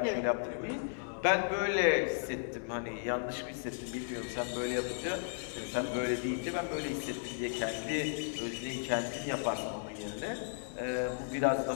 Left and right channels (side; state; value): right; silent; 54 dB below the other